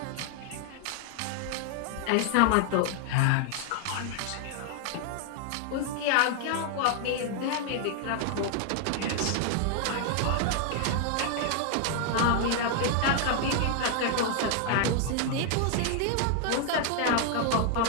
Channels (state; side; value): different; both; correlation 0.00